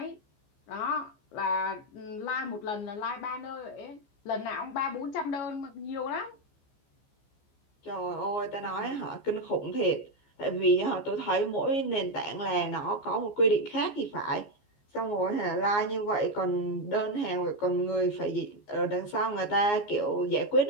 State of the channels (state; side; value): late; right; 14 ms